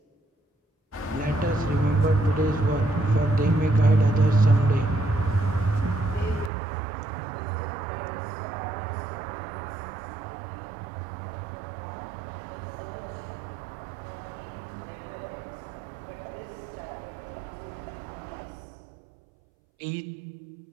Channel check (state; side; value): drops out; left; at 6.5 s